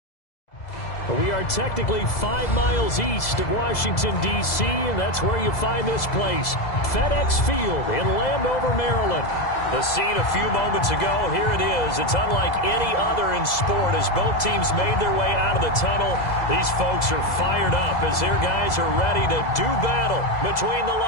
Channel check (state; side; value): late; right; 2.0 ms